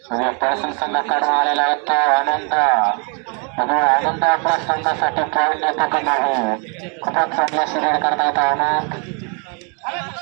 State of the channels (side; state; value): left; quieter; 37.4 dB